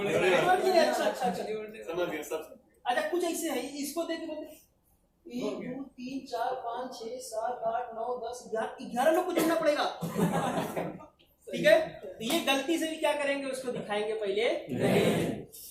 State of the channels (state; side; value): identical; both; correlation 1.00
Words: है। अच्छा कुछ ऐसे है, इसको देख बोलते 1 2 3 4 5 6 7 8 9 10 11 लोग को जोड़ना पड़ेगा। ठीक है, तो ये गलती से भी क्या करेंगे, उसको दिखाएंगे पहले।